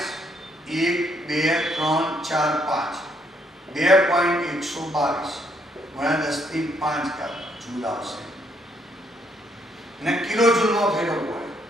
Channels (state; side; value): normal; both; correlation 0.70